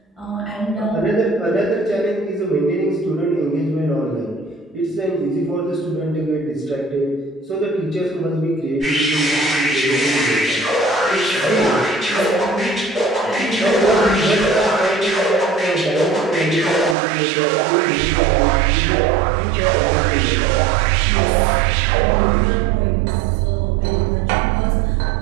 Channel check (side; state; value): left; drops out; at 16.9 s